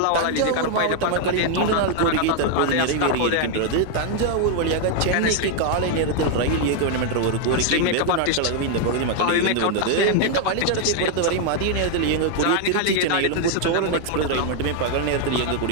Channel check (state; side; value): different; both; correlation 0.00